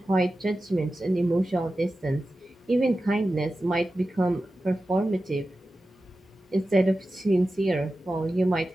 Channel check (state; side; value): normal; both; correlation 0.93